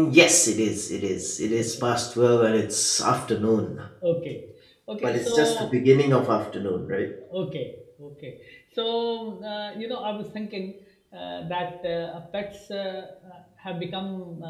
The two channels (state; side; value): identical; both; correlation 1.00